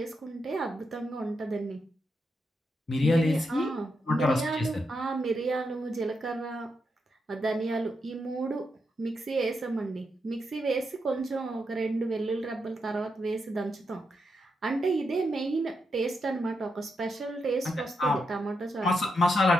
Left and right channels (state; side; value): normal; both; correlation 0.83